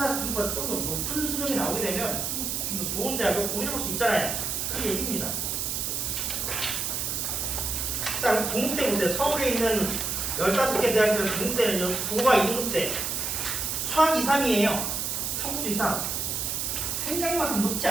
좀 더 높은 수능이 나오게 되면 좀 더 좋은 대학을 고민해볼 수 있잖아요. 그 얘기입니다. 자, 동국대 보세요. 서울에 있는 15개 대학교 동국대는요. 국어가 2등급대, 수학 2, 3이에요. 탐구도 2, 3. 생각만큼 높지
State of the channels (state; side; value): noise; right; hiss, 1 dB below the sound